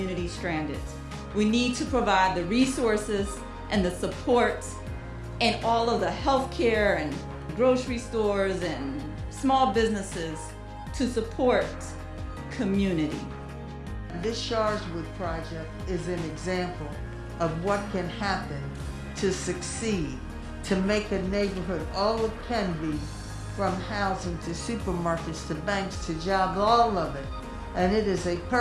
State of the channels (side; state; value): both; identical; correlation 1.00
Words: stranded. We need to provide the resources and the support and all of the healthcare and grocery stores and small businesses to support community. This Sharswood project is an example of what can happen to succeed, to make a neighborhood all it can be, from housing to supermarkets to banks to jobs, all of it. And it is a